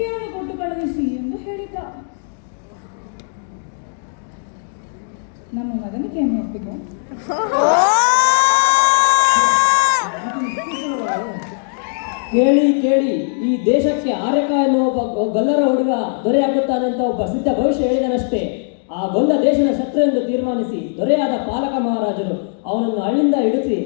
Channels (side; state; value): right; silent; digital silence